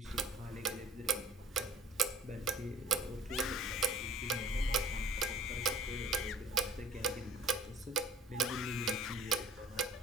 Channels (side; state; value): both; normal; correlation 0.50